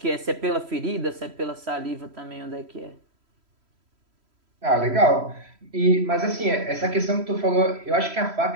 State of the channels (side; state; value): left; late; 3.1 ms